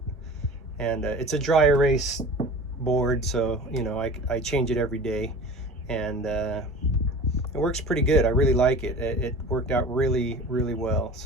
And it's a dry erase board, so you know, I change it every day, and it works pretty good. I really like it. It worked out really, really well.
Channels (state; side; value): normal; both; correlation 0.38